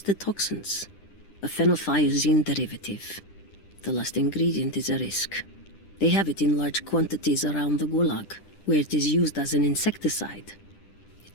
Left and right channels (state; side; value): late; right; 10 ms